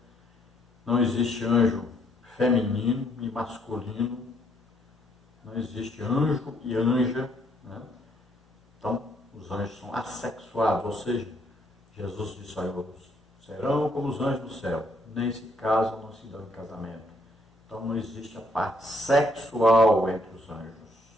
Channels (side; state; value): both; normal; correlation 0.69